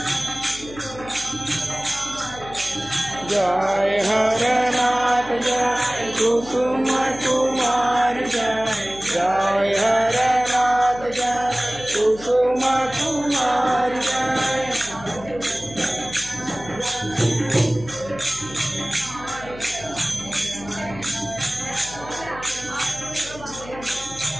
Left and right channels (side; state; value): left; noise; hum, 16 dB below the sound